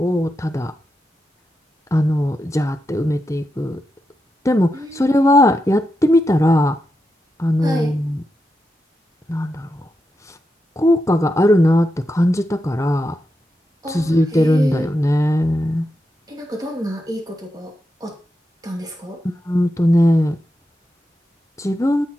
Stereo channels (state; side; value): normal; both; correlation 0.87